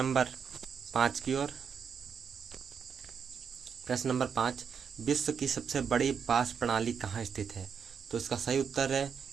5 की ओर। प्रश्न नंबर 5, विश्व की सबसे बड़ी वाष्प प्रणाली कहाँ स्थित है? तो इसका सही उत्तर है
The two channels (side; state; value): left; quieter; 6.8 dB